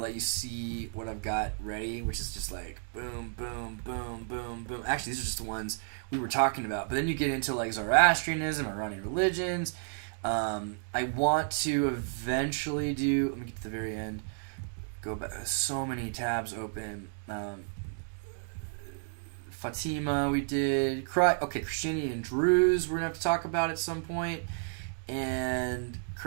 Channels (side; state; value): left; silent; digital silence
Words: let you see what I've got ready, which is just like boom, boom, boom, boom, boom. Actually, these are just the ones we were talking about. But then you get into like Zoroastrianism, Iranian religions. I want to eventually do, let me get to the very end, Go back. So many tabs open. Fatima, we did. Christianity and Druze, we're going to have to talk about at some point. And